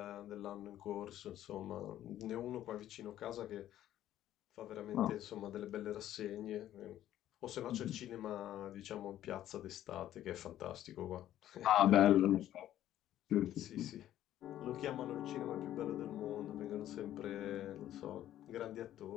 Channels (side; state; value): right; quieter; 12.5 dB